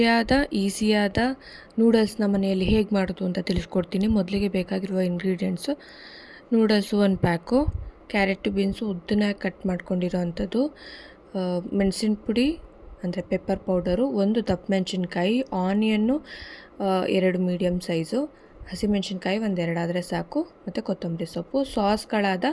ಈಸಿಯಾದ ನೂಡಲ್ಸ್ನ ಮನೆಯಲ್ಲಿ ಹೇಗೆ ಮಾಡೋದು ಅಂತ ತಿಳಿಸ್ಕೊಡ್ತೀನಿ. ಮೊದಲಿಗೆ ಬೇಕಾಗಿರುವ ingredients: noodles 1 pack, carrot beans ಉದ್ದನಾಗಿ ಕಟ್ ಮಾಡ್ಕೊಂಡಿರೋ ಅಂಥದ್ದು, ಮೆಣಸಿನ ಪುಡಿ ಅಂದರೆ ಪೆಪ್ಪರ್ ಪೌಡರು, 1 ದಪ್ಪ ಮೆಣಸಿನ್ಕಾಯಿ, ಆನಿಯನ್ನು 2 ಮೀಡಿಯಮ್ ಸೈಜು, ಹಸಿಮೆಣಸಿನ್ಕಾಯಿ 1-2 ಆದರೆ ಸಾಕು, ಮತ್ತು ಕೊತ್ತಂಬರಿ ಸೊಪ್ಪು. ಸಾಸ್ಗಳಾದ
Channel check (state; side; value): identical; both; correlation 1.00